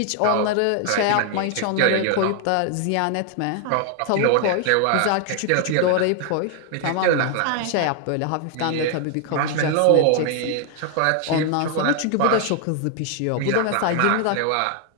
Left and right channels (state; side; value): different; both; correlation 0.00